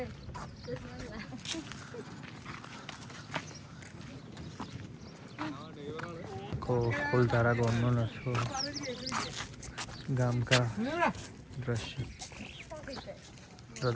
ફૂલધારા ગામનો નશો ગામ કા દ્રશ્ય. તો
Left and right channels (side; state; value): both; identical; correlation 1.00